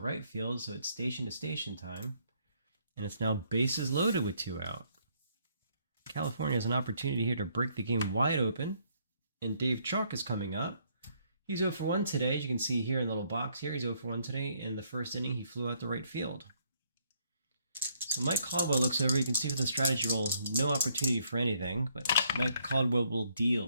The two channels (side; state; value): both; inverted; correlation -0.69